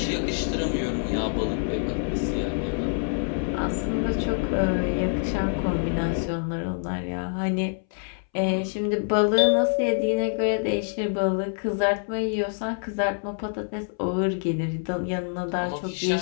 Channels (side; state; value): right; silent; 61 dB below the other